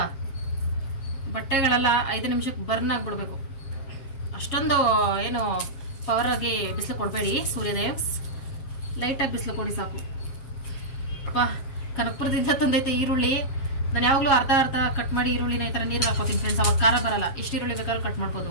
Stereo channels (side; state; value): right; late; 7.4 ms